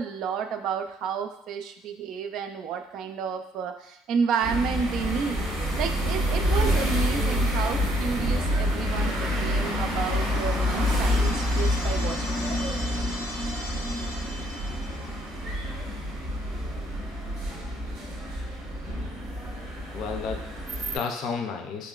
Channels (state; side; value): normal; both; correlation 0.67